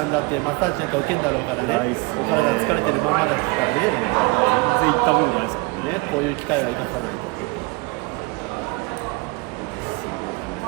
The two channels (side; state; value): left; quieter; 26.2 dB